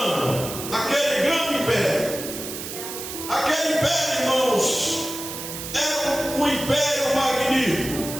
aquele grande império, aquele império, irmãos, era um império magnífico,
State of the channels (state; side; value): noise; right; hiss, 8 dB below the sound